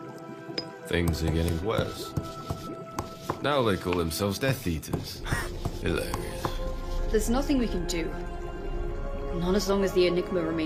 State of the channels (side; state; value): both; identical; correlation 1.00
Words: Things are getting worse. Now they call themselves Death Eaters. Hilarious. There's nothing we can do. Not as long as the enigma